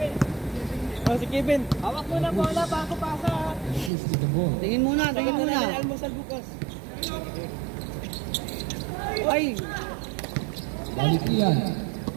Oh, si Kevin. Hawak mo na bola bago pasa. Push to the ball. Tingin muna. Almusal bukas. Ay, Valentian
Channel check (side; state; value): left; drops out; at 3.9 s